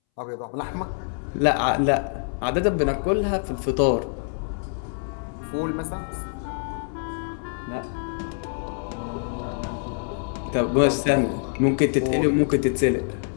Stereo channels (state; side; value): silent; right; 61 dB below the other